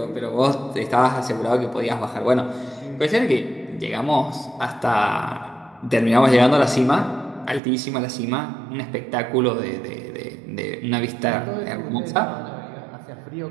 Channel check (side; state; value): left; drops out; at 7.6 s